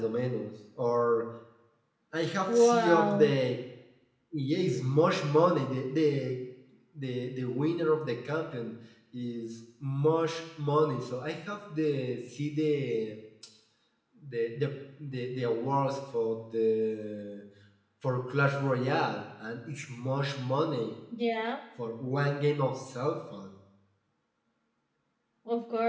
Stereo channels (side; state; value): both; identical; correlation 1.00